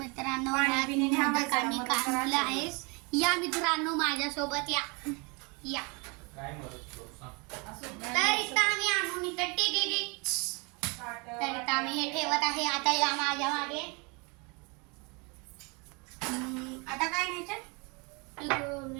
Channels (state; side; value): quieter; left; 30.1 dB